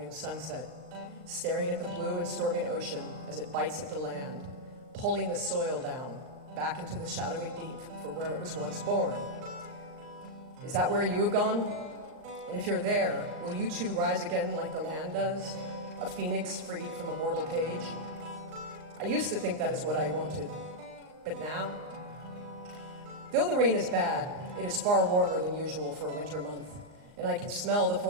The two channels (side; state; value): left; late; 39 ms